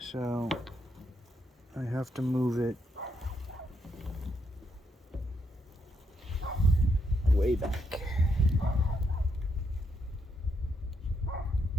I have to move it way back.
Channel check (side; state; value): both; normal; correlation 0.78